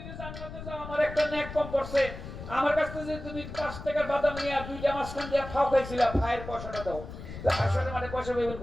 যে জান্নাতে যাও, আমার একটা নেক কম পড়ছে, আমার কাছ থেকে তুমি 5 টাকার বাদাম নিয়ে 2টা মাঝখান দিয়ে ফাও খাইছিলা, ফায়ের পয়সাটা দাও। হাসরের মাঠে পয়সা পাইবেন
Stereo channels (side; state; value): left; noise; rumble, 11 dB below the sound